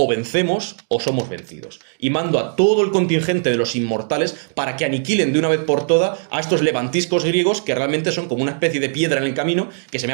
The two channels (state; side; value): silent; left; digital silence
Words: vencemos o somos vencidos. Y mando a todo el contingente de los inmortales para que aniquilen de una vez por todas a estos levantiscos griegos que realmente son como una especie de piedra en el camino que se me